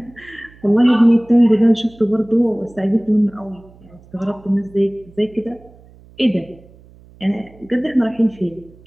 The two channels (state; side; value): noise; right; hum, 25 dB below the sound